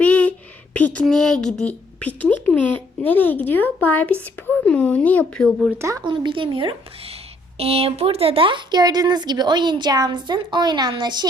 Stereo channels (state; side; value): normal; both; correlation 0.66